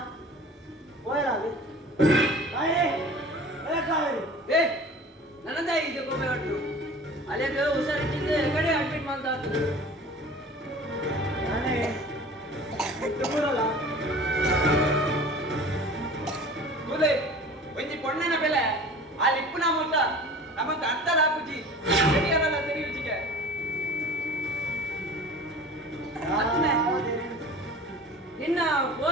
అది ಕಾವೇರಿ ಏ ನನ್ನದ ಇದು ಗೋಪಿ ಹೊಟ್ಟು ಅಲ್ಲಿಗೆ ಹುಷಾರಿಟ್ಟಿದ್ದೆ ಕಡೆ ಅಡ್ಮಿಟ್ ಮಾಡ್ತಾ ಇದ್ರು ನಾನೇ ಬಿಟ್ಟು ಬರಲ್ಲ ಕೂಲೆ ಒಂಜಿ ಪೊಣ್ಣನ ಬೆಲೆ ಆ ಲಿಪ್ಪುನ ಮೊತ್ತ ನಮಗೆ ಅರ್ಥ ಹಾಕುಜಿ ಸರಿಯಲ್ಲ ತೆರೆಯುಜಿಗೆ ನಿನ್ನ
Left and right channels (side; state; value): both; normal; correlation 0.41